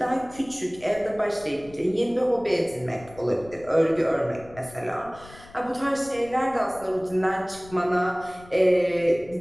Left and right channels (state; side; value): noise; left; rumble, 21 dB below the sound